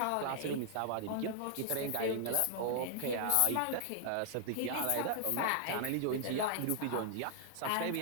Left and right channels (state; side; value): different; both; correlation -0.01